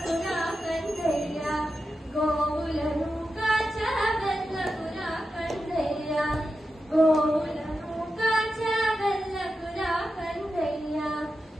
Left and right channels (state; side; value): normal; both; correlation 0.90